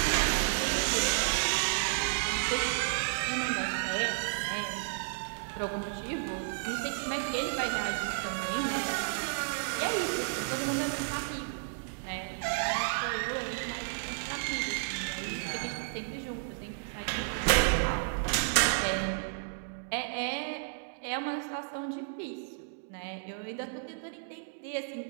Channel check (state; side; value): silent; left; digital silence